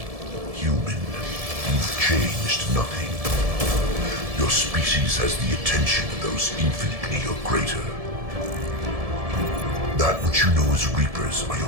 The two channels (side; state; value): left; late; 1.7 ms